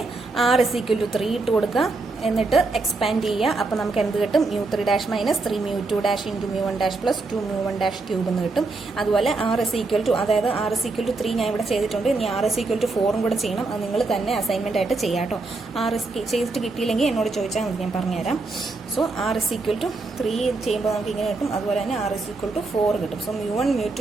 ആർ ഇസ് ഈക്വൽ ടു 3 ഇട്ട് കൊടുക്കുക, എന്നിട്ട് എക്സ്പാൻഡ് ചെയ്യുക. അപ്പോൾ നമുക്ക് എന്ത് കിട്ടും? μ3 dash minus 3 μ2 dash into μ1 dash plus 2 μ1 dash cube എന്ന് കിട്ടും. അതുപോലെ ആർ ഇസ് ഈക്വൽ ടു, അതായത് ആർ ഇസ് ഈക്വൽ ടു 3 ഞാൻ ഇവിടെ ചെയ്തിട്ടുണ്ട്. ഇനി ആർ ഇസ് ഈക്വൽ ടു 4 കൂടെ ചെയ്യണം. അത് നിങ്ങൾ തന്നെ അസൈൻമെന്റ് ആയിട്ട് ചെയ്യാം കേട്ടോ. ആർ ഇസ് ചെയ്തിട്ട് കിട്ടിയില്ലെങ്കിൽ എന്നോട് ചോദിച്ചാൽ മതി, ഞാൻ പറഞ്ഞുതരാം. So r is equal to 3 ചെയ്യുമ്പോൾ നമുക്ക് ഇങ്ങനെ കിട്ടും. അതുപോലെ തന്നെ ആർ ഇസ് ഈക്വൽ ടു 4 കിട്ടും. സോ μ1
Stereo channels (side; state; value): left; quieter; 3.6 dB